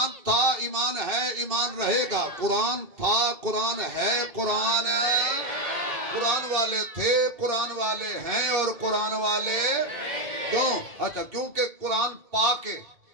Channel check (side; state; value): left; late; 2.7 ms